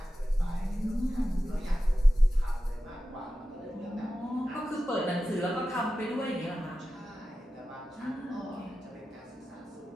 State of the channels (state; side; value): normal; both; correlation 0.93